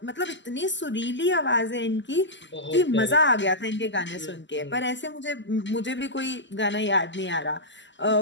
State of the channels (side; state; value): right; late; 0.54 ms